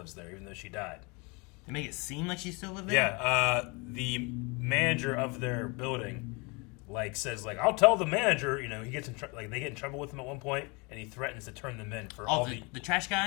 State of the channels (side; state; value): right; quieter; 29.2 dB